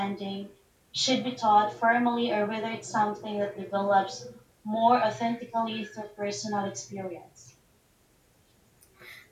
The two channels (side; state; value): both; identical; correlation 1.00